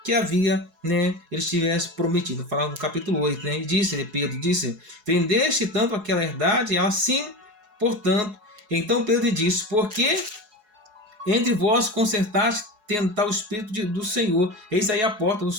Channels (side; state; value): left; late; 4.7 ms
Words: que havia, né, ele tivesse prometido. Falava no capítulo 8, né, e Pedro disse, vendeste tanto aquela herdade? Ela, sim, portanto. Então Pedro disse, porque entre vós consertaste tentar o Espírito do Senhor, eis aí a porta